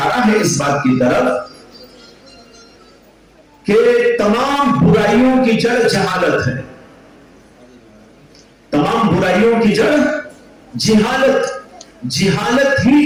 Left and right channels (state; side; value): identical; both; correlation 1.00